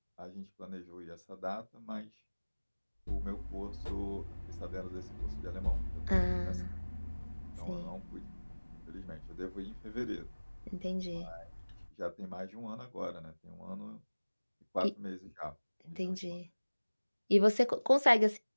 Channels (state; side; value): inverted; both; correlation -1.00